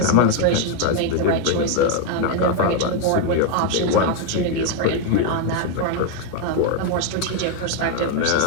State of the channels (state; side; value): different; both; correlation 0.01